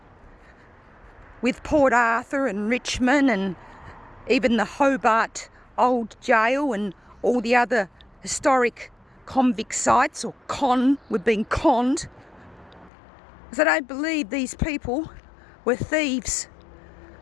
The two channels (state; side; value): drops out; right; at 12.9 s